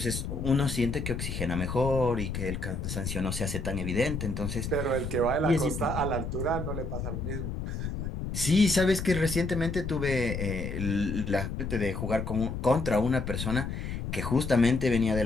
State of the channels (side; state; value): left; noise; rumble, 4 dB below the sound